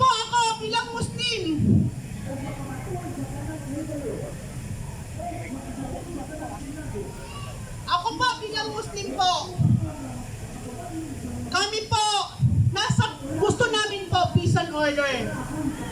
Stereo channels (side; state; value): both; identical; correlation 1.00